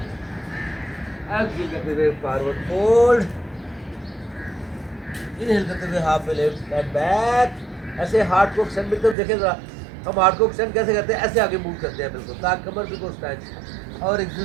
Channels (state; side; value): drops out; left; at 9.2 s